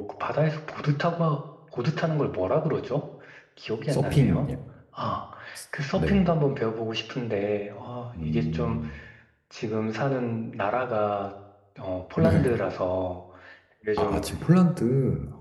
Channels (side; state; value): both; identical; correlation 1.00